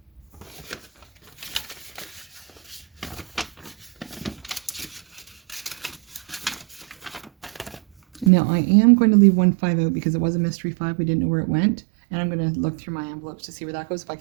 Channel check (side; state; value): left; drops out; at 8.3 s